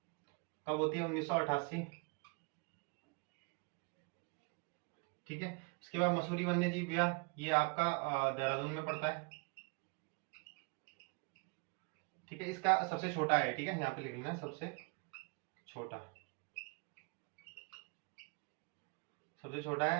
कब होती है, 1988, ठीक है। उसके बाद मसूरी वन्य जीव विहार, ये आपका देहरादून में पड़ता है, ठीक है। इसका सबसे छोटा है, ठीक है, यहाँ पे लिख लेना सबसे छोटा। सबसे छोटा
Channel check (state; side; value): quieter; left; 32.5 dB